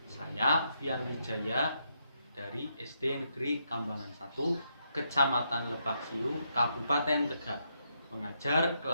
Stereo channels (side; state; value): both; inverted; correlation -0.79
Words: Saya Fian Wijaya dari SD Negeri Kambangan 1, Kecamatan Lebak Siu, Kabupaten Tegal, mengajar